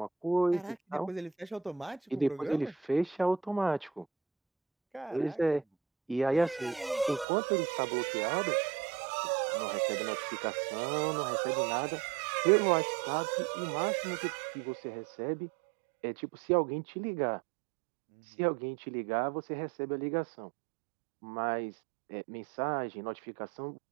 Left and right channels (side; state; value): left; drops out; at 7.2 s